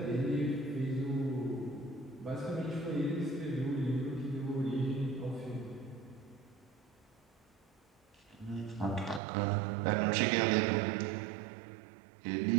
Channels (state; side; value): drops out; left; at 9.2 s